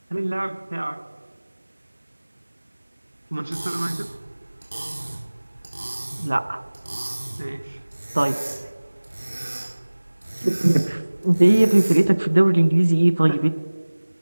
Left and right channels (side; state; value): both; inverted; correlation -1.00